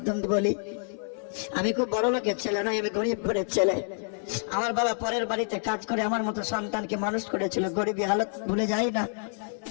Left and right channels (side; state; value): right; silent; 59 dB below the other